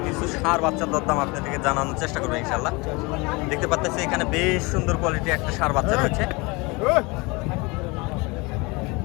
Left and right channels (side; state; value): right; quieter; 26.1 dB